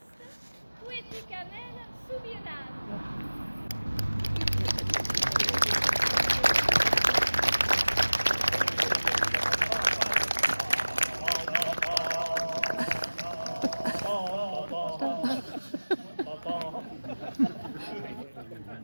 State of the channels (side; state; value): both; inverted; correlation -1.00